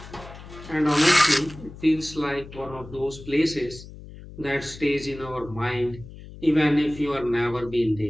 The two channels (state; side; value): noise; left; hum, 16 dB below the sound